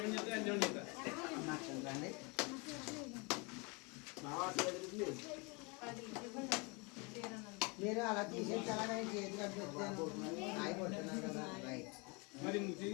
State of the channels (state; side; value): quieter; right; 29.8 dB